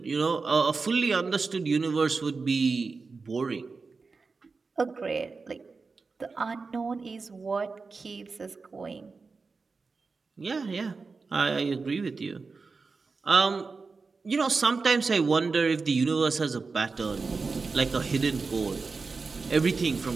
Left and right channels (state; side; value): quieter; left; 4.4 dB